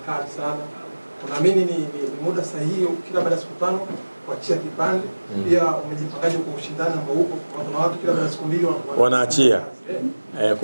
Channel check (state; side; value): inverted; both; correlation -1.00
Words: kali sana. Unaamini ni muda sahihi kila baada ya siku 5 kuachia kipande? Pia umejipangaje kwa ushindani ambao uko? Kuna watu kila baada ya siku 2 wanaachia.